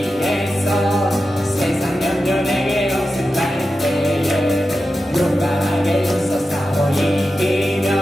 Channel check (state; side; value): normal; both; correlation 0.91